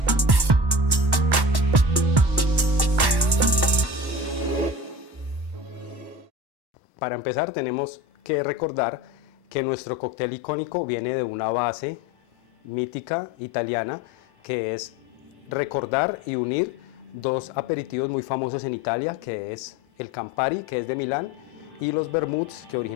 Para empezar tenemos que recordar que nuestro cóctel icónico viene de una base mítica italiana que es recordar y unir dos aperitivos muy famosos en Italia, que es el Campari, que es de Milán, y los vermuts, que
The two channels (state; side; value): late; left; 1.1 ms